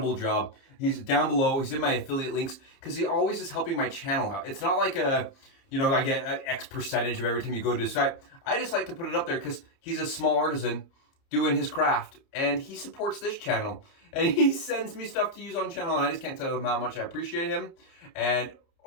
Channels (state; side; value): late; right; 30 ms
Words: job. He's down below. He's in my affiliate links because he always is helping my channel out. It's not like I get an X percentage of every time you go into his site. I just like to put it up there because he's a small artisan doing his craft, and he supports this channel, and he sends me stuff to use on channel, and I just can't tell him how much I appreciate him. And